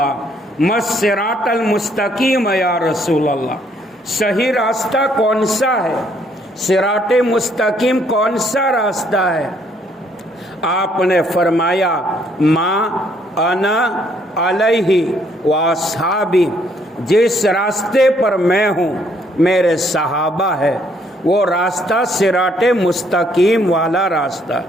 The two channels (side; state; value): both; normal; correlation 0.67